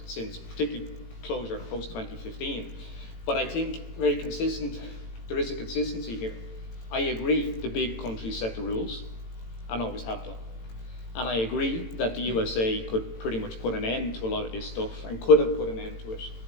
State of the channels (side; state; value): right; late; 18 ms